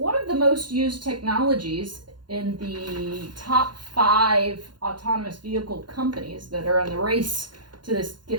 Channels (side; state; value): left; late; 0.71 ms